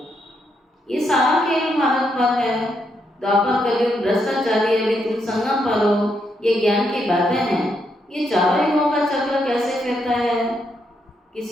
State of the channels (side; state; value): both; normal; correlation 0.78